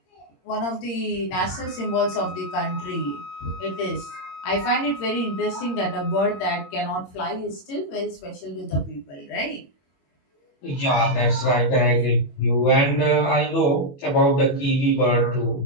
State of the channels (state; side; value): late; right; 22 ms